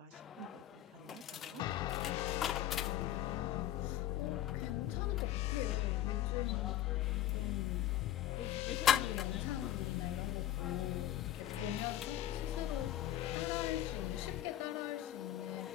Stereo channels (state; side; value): quieter; right; 12.3 dB